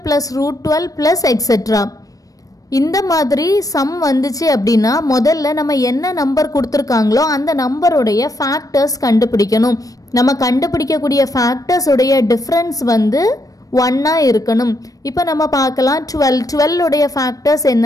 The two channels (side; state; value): right; late; 0.17 ms